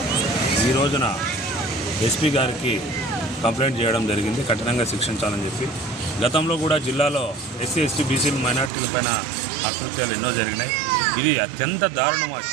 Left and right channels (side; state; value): left; drops out; at 8.7 s